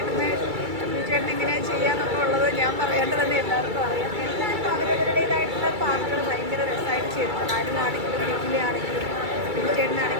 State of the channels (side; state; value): left; late; 2.3 ms